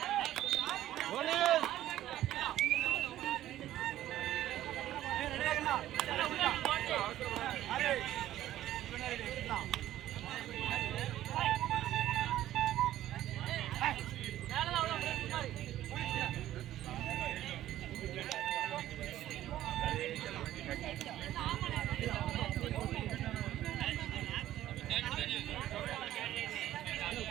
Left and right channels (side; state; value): left; quieter; 13.3 dB